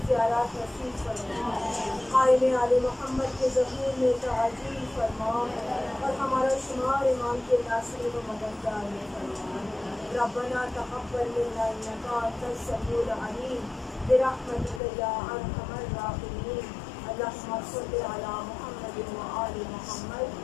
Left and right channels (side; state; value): right; drops out; at 14.8 s